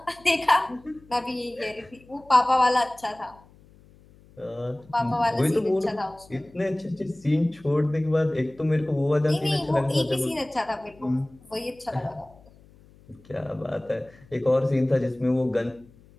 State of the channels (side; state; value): left; noise; hum, 26 dB below the sound